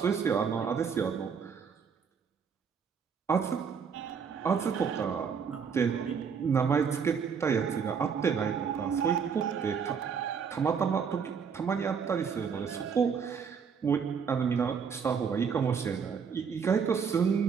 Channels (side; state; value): left; quieter; 6.4 dB